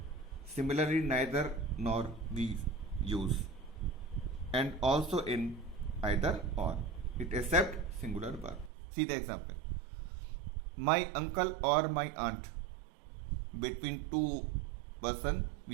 Similarly, neither nor we use, and also in either or, it accept singular verb. See the example. My uncle or my aunt, between two person,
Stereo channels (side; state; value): left; drops out; at 8.7 s